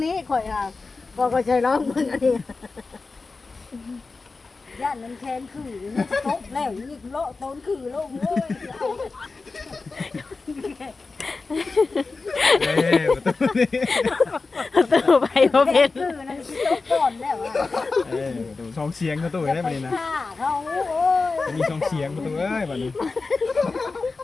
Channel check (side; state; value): right; quieter; 4.0 dB